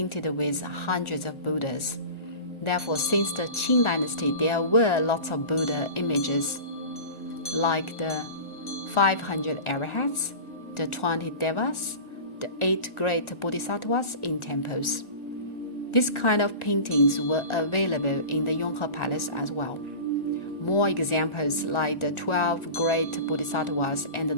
with hundreds of Buddhas. Therefore, since the Qing dynasty, there were lots of Buddha images, like the 500 arahats, the 20 devas, the 8 great bodhisattvas in temples. This kind of paintings were available in the Yonghe Palace as well. More examples like the 12 great bodhisattvas and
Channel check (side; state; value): right; late; 1.4 ms